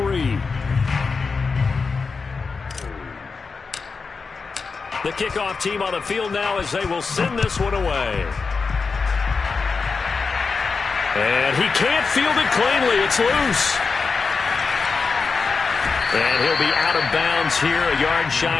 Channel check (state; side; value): quieter; right; 4.7 dB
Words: The kickoff team on the field now as they will send this one away. And he can't field it cleanly. It's loose. And he'll be out of bounds here, a yard